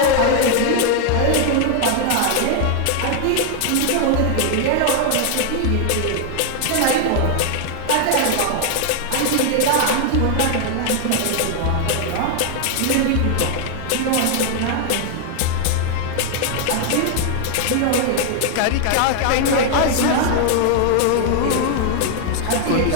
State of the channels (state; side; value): different; both; correlation 0.00